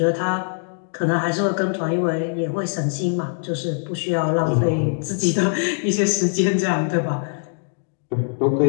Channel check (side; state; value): right; silent; 64 dB below the other